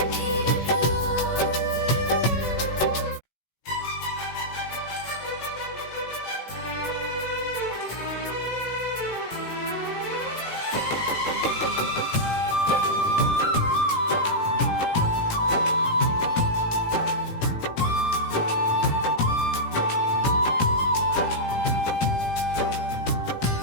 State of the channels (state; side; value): late; right; 18 ms